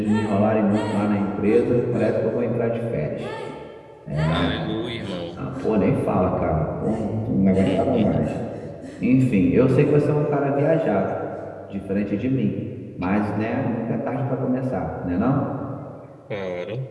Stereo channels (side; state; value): both; identical; correlation 1.00